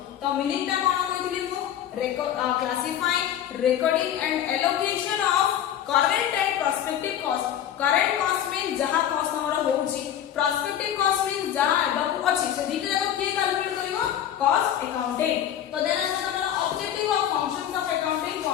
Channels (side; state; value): right; quieter; 10.4 dB